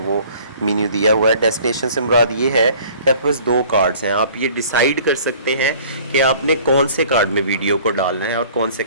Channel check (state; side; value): inverted; both; correlation -0.51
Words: मेन्यू दिया हुआ है। डेस्टिनेशन से मुराद ये है कि आपके पास दो कार्ड्स हैं, आप ये डिसाइड कर सकते हैं कि आपने कौन से कार्ड में वीडियो को डालना है और कौन से